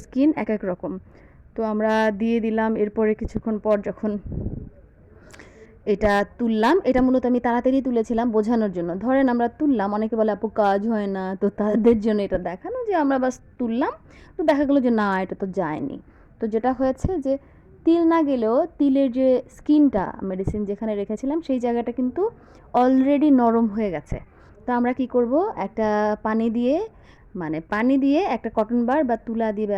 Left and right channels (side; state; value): both; identical; correlation 1.00